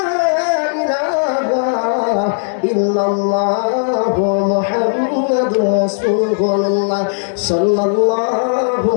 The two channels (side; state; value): right; silent; digital silence